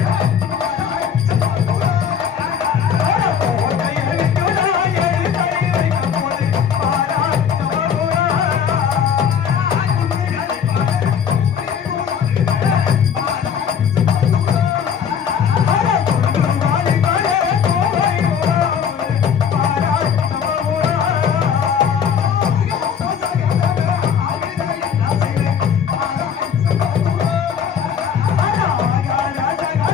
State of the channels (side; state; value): right; quieter; 7.6 dB